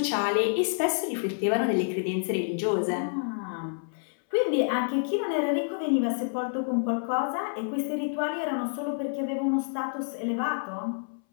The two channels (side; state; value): right; silent; 59 dB below the other